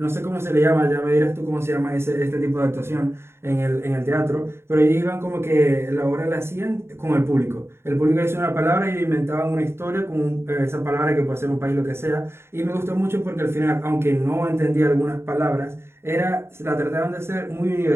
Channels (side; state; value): left; late; 0.12 ms